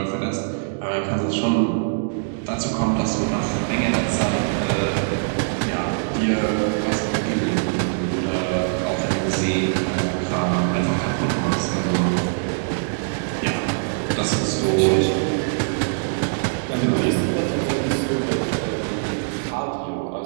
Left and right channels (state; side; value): silent; left; digital silence